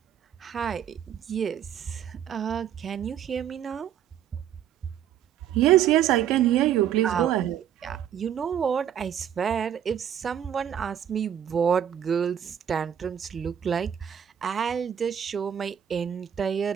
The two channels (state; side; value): quieter; left; 9.5 dB